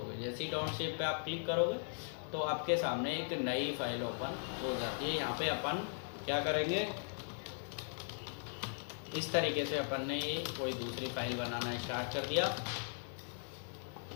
जैसे ही डोंट सेव पे आप क्लिक करोगे तो आपके सामने एक नई फाइल ओपन हो जाती है। यहाँ पे अपन क्या करेंगे, इस तरीके से अपन ने ये कोई दूसरी फाइल बनाना स्टार्ट कर दिया।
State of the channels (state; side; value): silent; right; digital silence